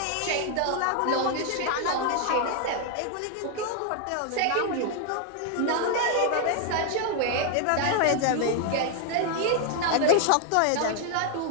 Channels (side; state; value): both; different; correlation 0.00